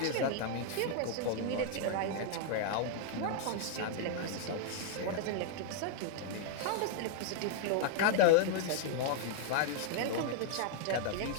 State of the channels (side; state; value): both; different; correlation 0.00